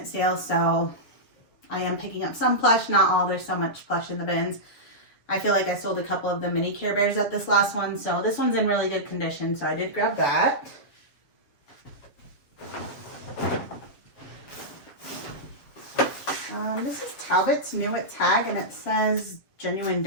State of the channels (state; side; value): late; right; 7.2 ms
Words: sale, so I am picking up some plush, not all. There's so much plush in the bins. I feel like I sold a couple of the mini Care Bears at this last one, so this one's in really good condition, so I did grab that. This is Talbot's new at tag, and it says genuine